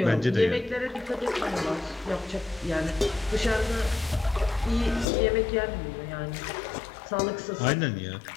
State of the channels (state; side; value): drops out; right; at 5.1 s